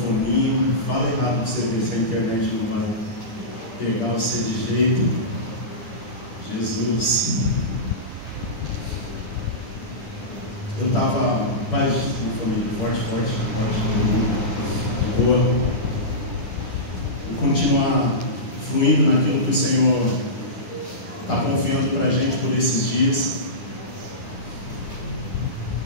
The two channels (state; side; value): late; right; 10 ms